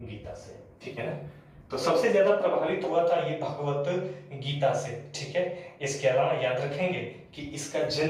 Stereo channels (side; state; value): both; identical; correlation 1.00